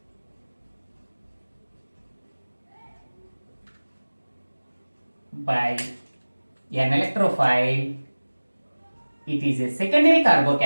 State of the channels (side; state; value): both; inverted; correlation -1.00